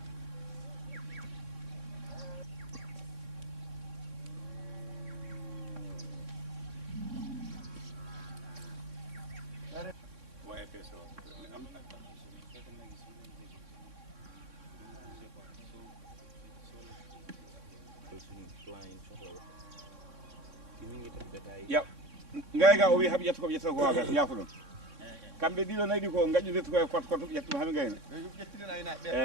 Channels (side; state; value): left; late; 3.6 ms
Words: ya ngayga o wi haɓe ƴetta koɓe ƴetta ko waga ñaako ɗon kamɓe ɗiɗo nayi ɗi ko gaƴƴudete koye koto koto ƴetta ɗum haɓe gayna